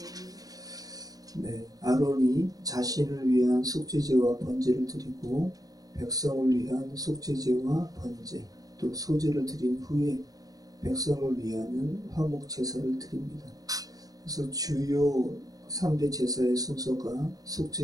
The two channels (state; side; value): late; left; 0.18 ms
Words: 네, 아론이 자신을 위한 속죄제와 번제를 드리고 백성을 위한 속죄제와 번제 또 소제를 드린 후에 백성을 위하는 화목 제사를 드립니다. 그래서 주요 3대 제사의 순서가